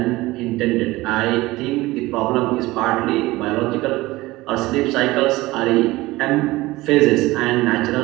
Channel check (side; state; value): left; quieter; 19.5 dB